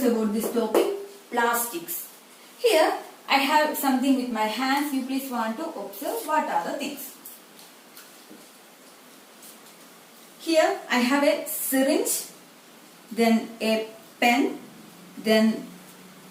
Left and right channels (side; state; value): both; identical; correlation 1.00